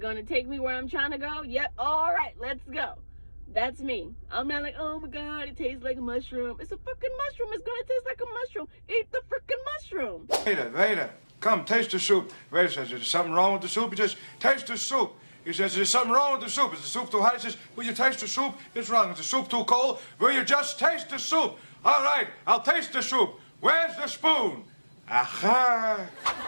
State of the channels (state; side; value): inverted; both; correlation -1.00